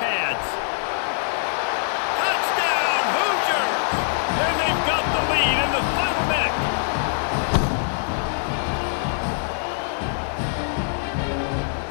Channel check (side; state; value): right; silent; digital silence